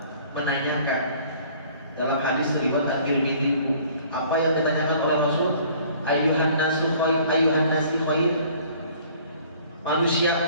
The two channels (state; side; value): inverted; both; correlation -0.54